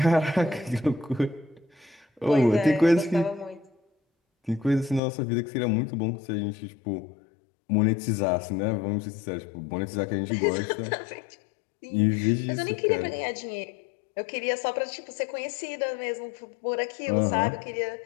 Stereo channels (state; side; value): drops out; right; at 5.0 s